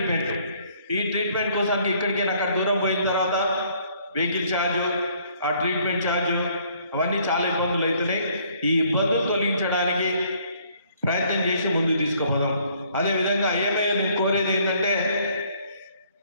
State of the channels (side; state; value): both; inverted; correlation -0.63